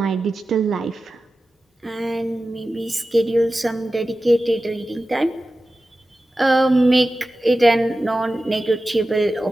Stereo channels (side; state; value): both; normal; correlation 0.94